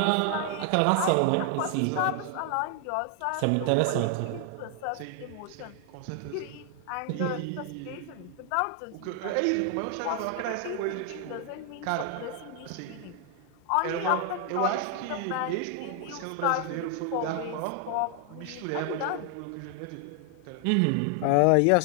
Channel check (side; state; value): both; different; correlation 0.00